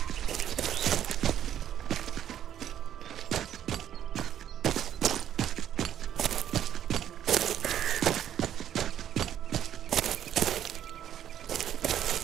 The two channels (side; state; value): left; quieter; 10.4 dB